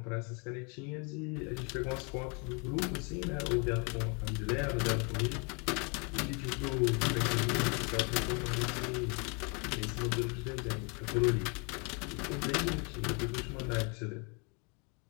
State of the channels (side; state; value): right; quieter; 33.8 dB